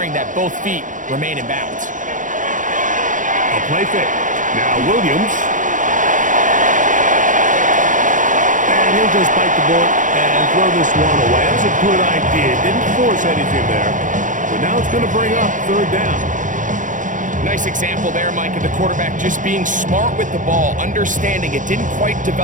that both feet remain in bounds. A play fake. Now Williams. And he'll just bite the bullet and throw this one away. That was a good idea. Didn't force anything there. But now it's going to bring up 3rd down. Nice example there, Mike, of the quarterback just being smart with the ball, understanding it didn't quite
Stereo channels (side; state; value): left; late; 0.37 ms